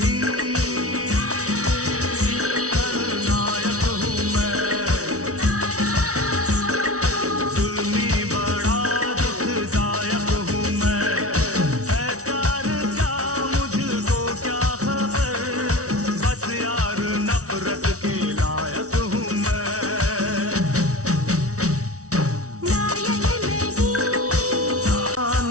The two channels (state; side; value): late; left; 0.66 ms